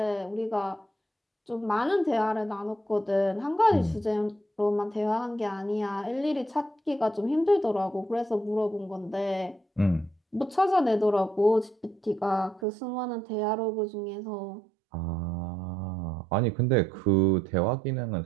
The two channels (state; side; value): drops out; left; at 12.7 s